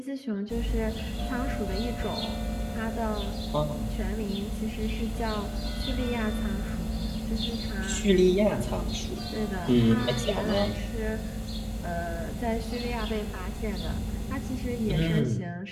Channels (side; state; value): both; identical; correlation 1.00